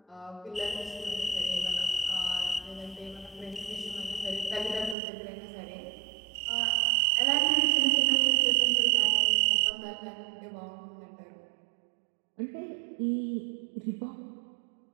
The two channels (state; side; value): drops out; left; at 5.0 s